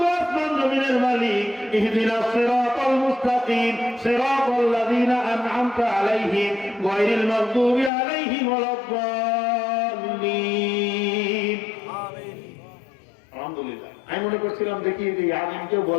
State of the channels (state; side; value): drops out; right; at 7.9 s